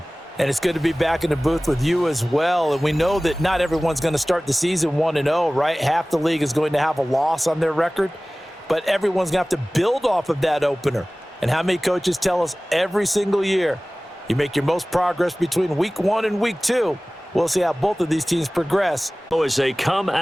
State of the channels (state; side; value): normal; both; correlation 0.98